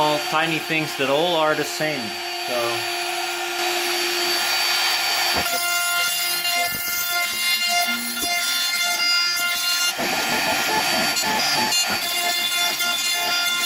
tiny things that all are the same. So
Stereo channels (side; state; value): both; identical; correlation 1.00